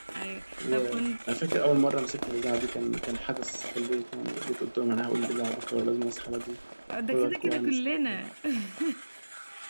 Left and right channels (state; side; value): inverted; both; correlation -1.00